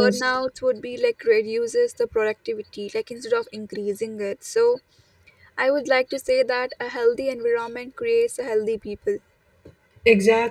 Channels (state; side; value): identical; both; correlation 1.00